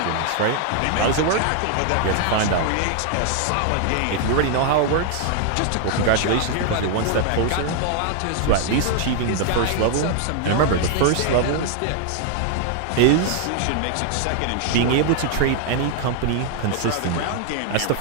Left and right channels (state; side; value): different; both; correlation 0.00